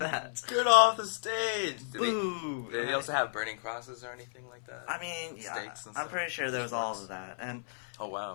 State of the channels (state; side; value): silent; right; 56 dB below the other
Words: Get off the stage! Boo! Did they also have burning crosses or anything like that? I mean, yeah, Stakes and I'm stuff? pretty sure there was all of that. And Oh